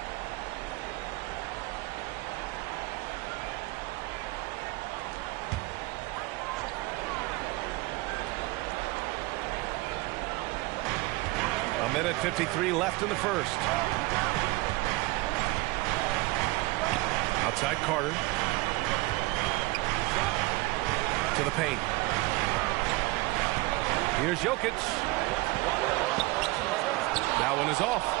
Minute 53 left in the first. Outside Carter. To the paint. Here's Jokic. That one is off.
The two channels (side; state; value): left; quieter; 21.9 dB